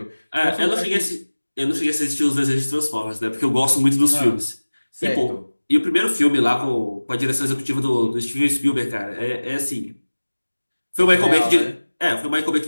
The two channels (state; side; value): inverted; both; correlation -1.00